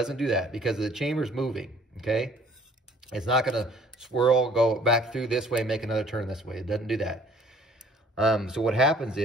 do that because the chamber's moving, okay? It's not gonna swirl, go back through this way, make another turn this way. It doesn't do that. So what happens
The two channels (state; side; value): normal; both; correlation 0.55